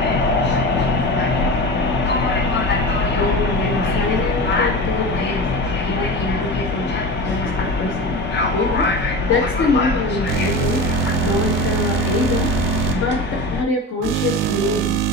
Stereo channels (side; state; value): both; normal; correlation 0.29